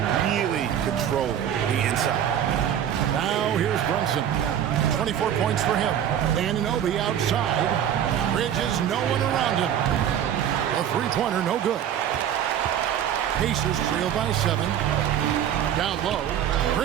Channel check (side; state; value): left; quieter; 9.9 dB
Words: really controlling the inside. Now here's Brunson. 24 points for him. Anunoby outside. Bridges, no one around him. A three-pointer, no good. Pacers trail by 7. Down low.